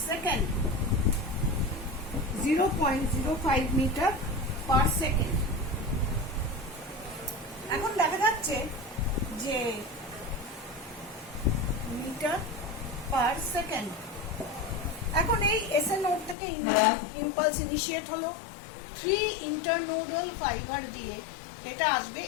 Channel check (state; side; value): drops out; right; at 16.4 s